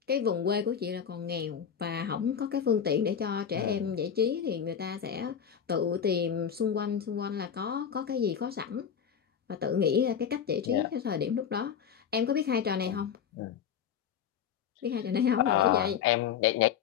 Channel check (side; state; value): right; quieter; 8.0 dB